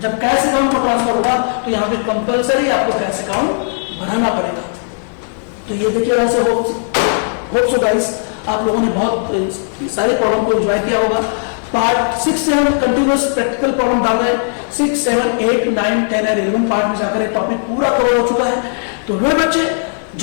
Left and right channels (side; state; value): right; silent; 62 dB below the other